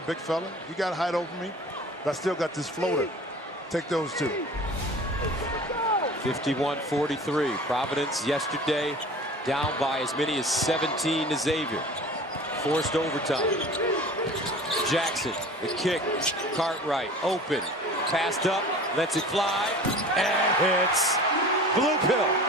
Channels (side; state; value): both; normal; correlation 0.41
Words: big fella, you got to hide over me, but I still got this floater. Take those 2. 51-43. Providence yesterday down by as many as 17 to Xavier. Forced overtime. Jackson, the kick. Cartwright open. Passed up, lets it fly, and hits Blue Pill.